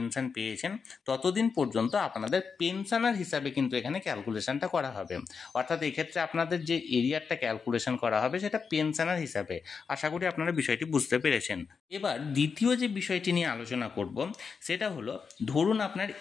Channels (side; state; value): right; quieter; 5.6 dB